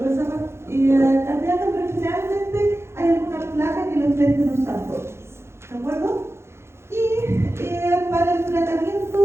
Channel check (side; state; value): left; late; 0.13 ms